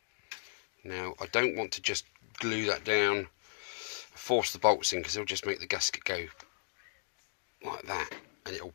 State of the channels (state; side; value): silent; right; digital silence